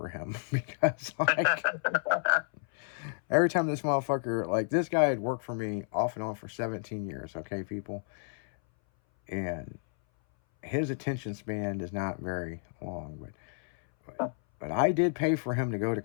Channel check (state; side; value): silent; right; 57 dB below the other